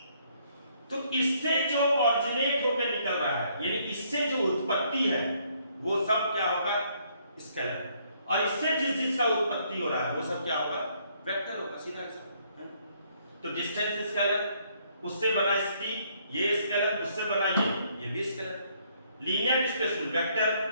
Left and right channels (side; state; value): both; inverted; correlation -0.68